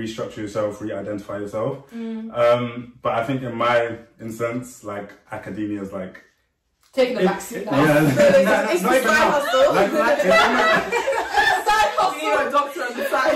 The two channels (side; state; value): both; identical; correlation 1.00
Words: yourself, re-identify yourself. But I think in my instance, like academia is like taking the backseat now. It's not even side hustle. Side hustle. You know, a doctor on the